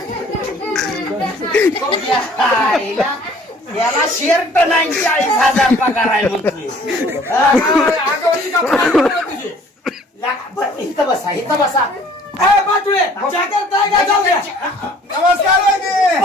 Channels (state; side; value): normal; both; correlation 0.54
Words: आईला याला शर्ट नाही 40,000 पगार आहे म्हणतोय आगाऊची का फार तुझी बरं, इथं बसा इथं बसा ए बाटुळे चहा करताय का जाऊ द्या नमस्कार वहिनी.